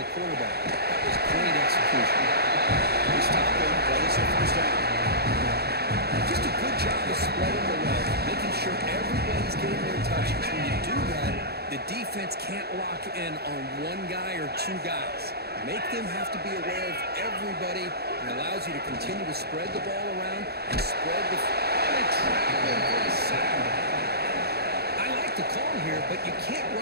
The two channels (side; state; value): left; late; 0.46 ms